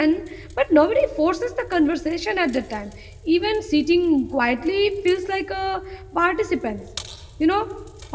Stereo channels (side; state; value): both; identical; correlation 1.00